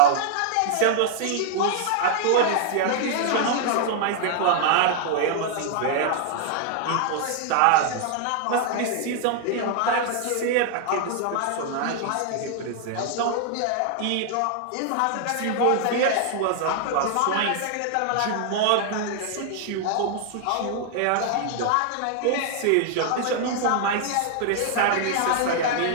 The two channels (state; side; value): different; both; correlation 0.00